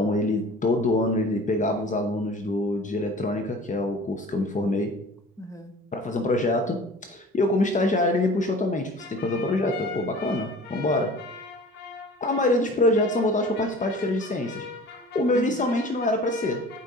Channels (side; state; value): both; normal; correlation 0.43